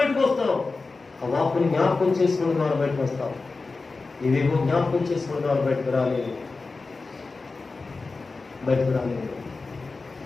వస్తావు. ఆ వాక్కుని జ్ఞాపకం చేసుకునే ద్వారా బయటకు వస్తావు. ఇవేమో జ్ఞాపకం చేసుకునే ద్వారా బయటకు రాలేదు.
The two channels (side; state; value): right; quieter; 3.9 dB